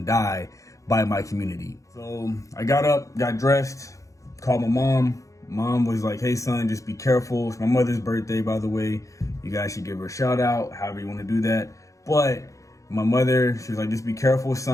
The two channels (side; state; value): right; late; 0.15 ms